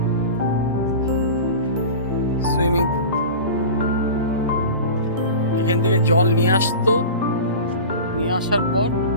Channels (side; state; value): both; inverted; correlation -0.33